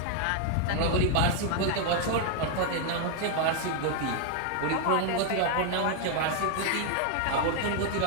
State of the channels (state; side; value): different; both; correlation 0.00